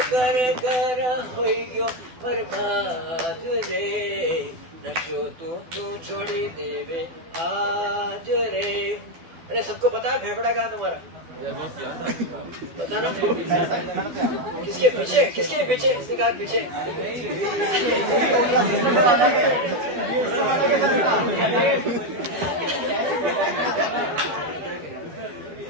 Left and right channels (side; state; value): left; late; 12 ms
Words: कर कर होइयो बर्बाद रे, नशो तू छोड़ी देवे आज रे। अरे सबको पता है फेफड़ा कहाँ तुम्हारा? बताना किसके पीछे, किसके पीछे? किसने कहा पीछे?